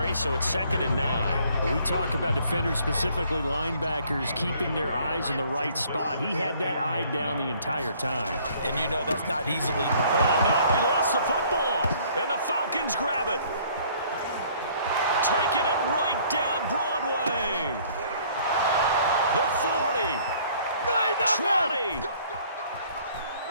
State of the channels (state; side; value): inverted; both; correlation -0.59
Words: so it's 2nd and 9. We talk about defenders, specifically linebackers, keeping their eyes in the right spot. He had that eye down the entire time. And you know that's not easily. Oh, no, he lost the football. And the Falcons grab it. Taking it right down Broadway. The 40. 20.